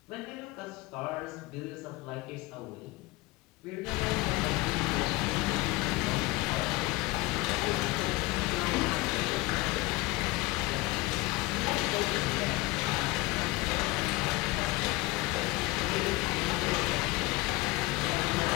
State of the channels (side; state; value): right; quieter; 21.4 dB